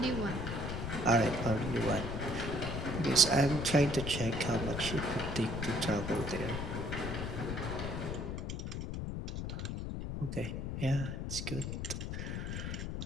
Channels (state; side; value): noise; left; rumble, 4 dB below the sound